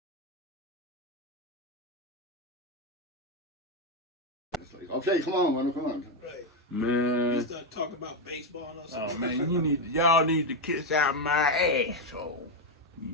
Okay, come on, Wendell, come on. Right. Man. You start talking about baseball and all Oh man, y'all need to kiss out my asshole.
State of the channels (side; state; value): both; normal; correlation 0.06